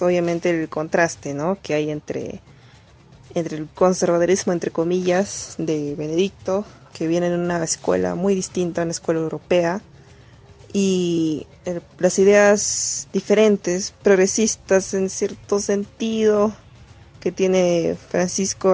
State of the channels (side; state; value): both; identical; correlation 1.00